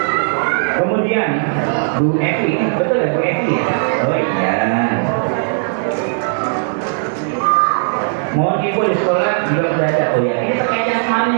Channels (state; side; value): silent; left; digital silence